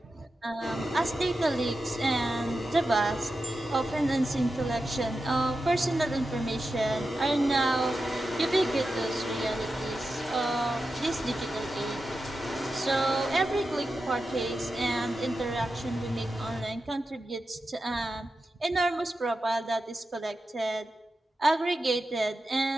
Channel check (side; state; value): both; normal; correlation 0.91